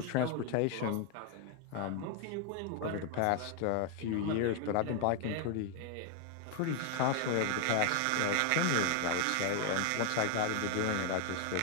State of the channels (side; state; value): both; different; correlation 0.01